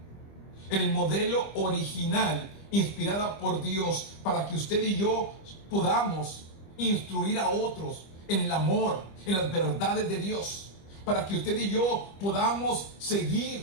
inspirada por Dios, para que usted y yo podamos instruir a otros en el amor, en las verdades de Dios, para que usted y yo podamos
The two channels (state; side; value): late; right; 25 ms